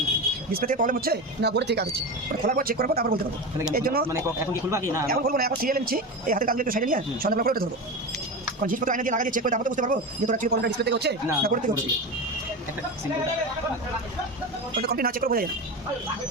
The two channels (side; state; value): both; normal; correlation 0.23